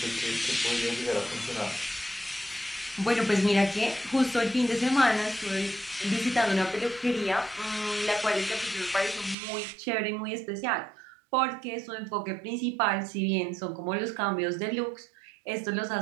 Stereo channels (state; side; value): drops out; left; at 9.3 s